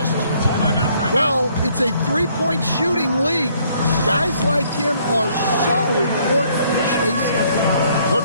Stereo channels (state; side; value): inverted; both; correlation -0.65